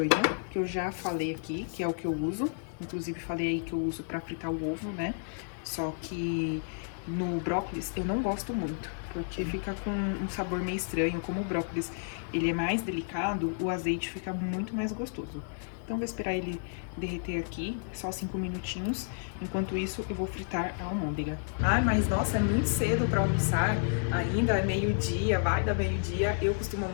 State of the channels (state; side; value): silent; right; 57 dB below the other